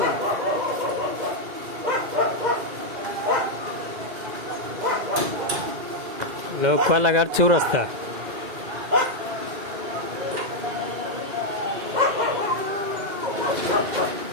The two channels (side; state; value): left; late; 2.0 ms